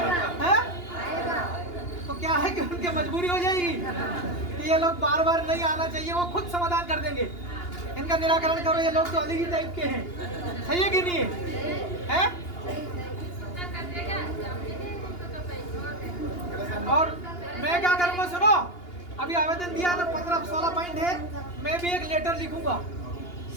है? तो क्या है कि उनकी मजबूरी हो जाएगी कि ये लोग बार बार नहीं आना चाहिए, वो खुद समाधान कर देंगे, इनका निराकरण करो, ये लोग तो अलग ही टाइप के हैं, सही है कि नहीं है? और मैं क्या करूंगा सुनो, अभी आवेदन दिया ना, 15-16 पॉइंट है, मैं भी एक लेटर लिखूंगा,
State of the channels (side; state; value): right; late; 2.8 ms